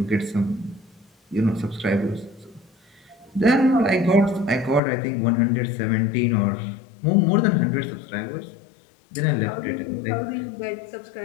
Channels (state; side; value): drops out; right; at 4.8 s